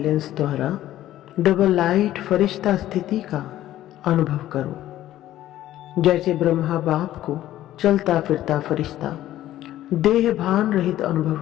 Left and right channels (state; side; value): quieter; right; 13.6 dB